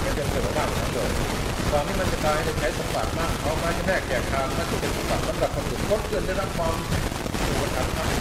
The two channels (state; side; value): identical; both; correlation 1.00